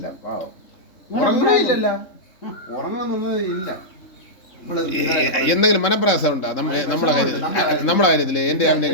ഉറങ്ങണില്ലല്ല, ഉറങ്ങണമെന്നത് ഇല്ല. എന്തെങ്കിലും മനപ്രയാസം ഉണ്ടോ നമ്മുടെ കാര്യത്തില്? എന്റെ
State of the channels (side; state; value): right; late; 3.8 ms